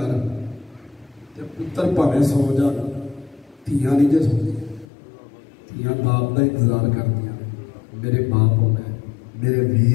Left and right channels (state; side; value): drops out; right; at 4.9 s